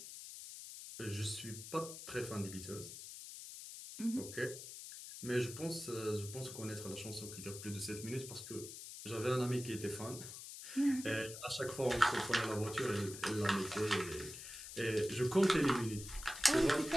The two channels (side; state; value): left; noise; hiss, 11 dB below the sound